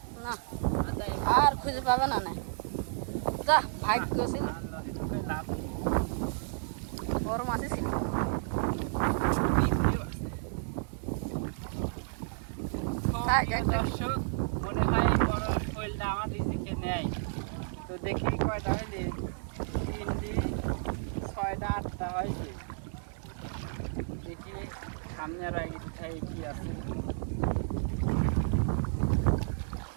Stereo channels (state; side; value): silent; left; 56 dB below the other